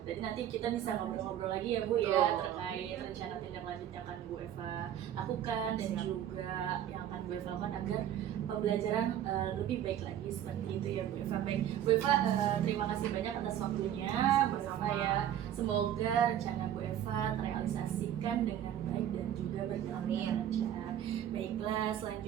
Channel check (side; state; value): left; quieter; 10.8 dB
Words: Jadi nanti kita bisa ngobrol-ngobrol lagi ya Bu ya terkait rencana tindak lanjut yang akan Bu Eva lakukan dan Siap. juga yang akan Bu Eva lakukan agar pembelajaran lebih baik lagi seperti itu ya Bu Eva. Baik Bu Eva, terima kasih banyak atas waktunya Bu Eva ya. Semoga rencana Bu Eva terrealisasikan dengan baik dan juga berjalan dengan lancar. Baiklah,